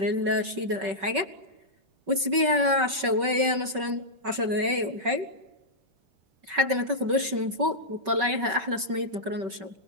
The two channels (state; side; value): late; left; 5.3 ms